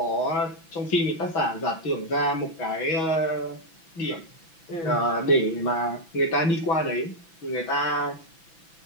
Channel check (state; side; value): late; right; 6.0 ms